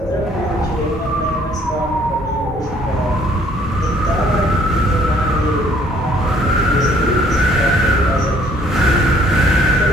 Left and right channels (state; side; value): normal; both; correlation 0.62